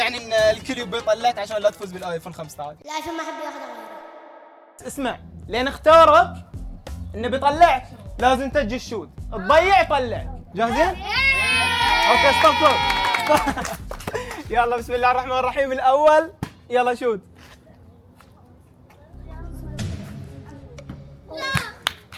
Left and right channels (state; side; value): identical; both; correlation 1.00